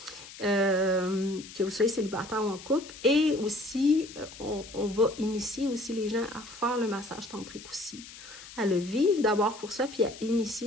que vous soyez célibataire ou en couple. Et aussi, on va initier aussi les gens à faire le massage tantrique aussi, à le vivre d'abord pour ça, puis à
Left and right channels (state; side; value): noise; left; hiss, 16 dB below the sound